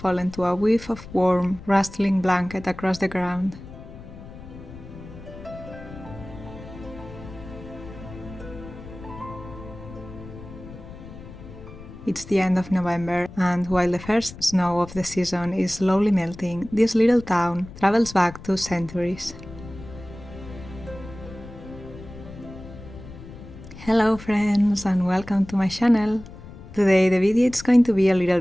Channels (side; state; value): left; noise; rumble, 15 dB below the sound